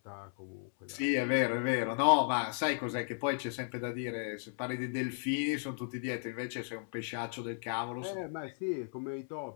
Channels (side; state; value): right; silent; 54 dB below the other